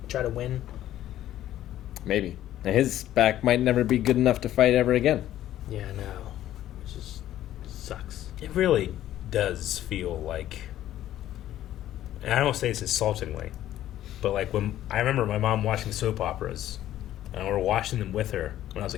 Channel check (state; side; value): quieter; right; 12.8 dB